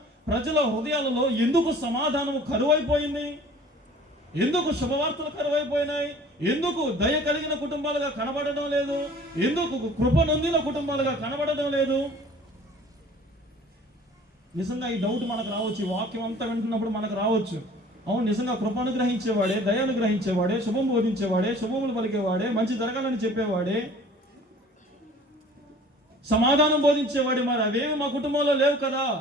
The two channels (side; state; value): both; normal; correlation 0.48